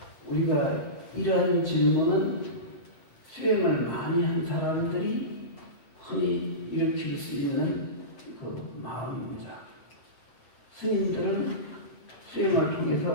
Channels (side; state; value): right; late; 7.8 ms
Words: 우리가 이러한 질문은 수행을 많이 한 사람들이 흔히 일으킬 수 있는 그 마음입니다. 스님들은 수행을